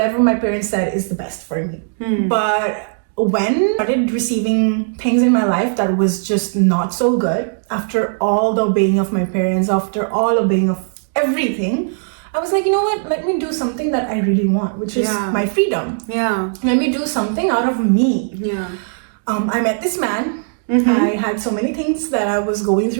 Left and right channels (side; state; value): left; silent; digital silence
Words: my parents said is the best for me. But when I started receiving things in my life that was just not so good, after all the obeying of my parents, after all obeying of everything, I was like, you know what? Let me do something that I really want, which is my freedom. Let me do something out of me. I met this man. I had so many things that I was going